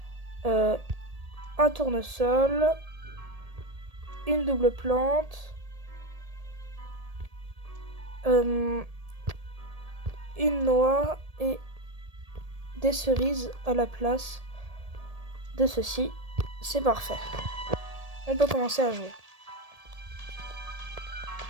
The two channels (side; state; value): left; late; 1.7 ms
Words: un tournesol, une double plante, une noix et des cerises à la place de ceci. C'est parfait. On peut commencer à jouer.